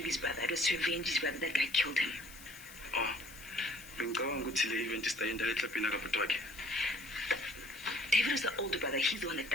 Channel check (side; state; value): left; noise; hiss, 17 dB below the sound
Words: his brother, it was to avenge his brother. That guy killed him. Oh. David was the older brother, he's the one that